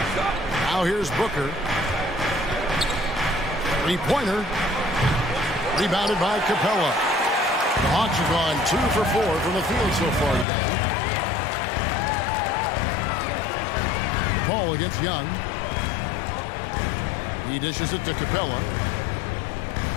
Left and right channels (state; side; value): drops out; right; at 10.5 s